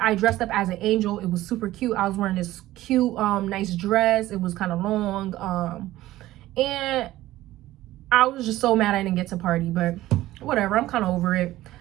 I dressed up as an angel. It was super cute. I was wearing this cute, nice dress. It was kind of long. And I was just so mad I didn't get to party, but whatever. I'm kind of over it.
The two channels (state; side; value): quieter; left; 15.7 dB